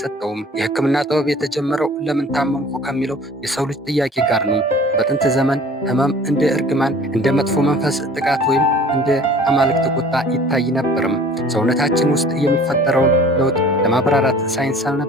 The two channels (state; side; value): normal; both; correlation 0.47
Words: የህክምና ጥበብ የተጀመረው ለምን ታመምኩ ከሚለው የሰው ልጅ ጥያቄ ጋር ነው። በጥንት ዘመን ህመም እንደ እርግማን፣ እንደ መጥፎ መንፈስ ጥቃት ወይም እንደ አማልክት ቁጣ ይታይ ነበርም። ሰውነታችን ውስጥ የሚፈጠረውን ለውጥ ለማብራራት ሳይንስ